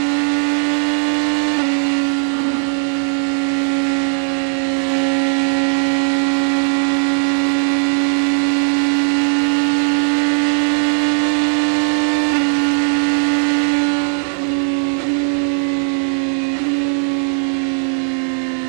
a reminder that it's a busy weekend because the IMSA WeatherTech Sports Car Championship roars into life. Our Townsend Bell, wish him well with Aim Vassar Sullivan this year in the GT Daytona category. And of course, the Indy 500, we're looking forward to that. August 23, the 104th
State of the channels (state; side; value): silent; left; digital silence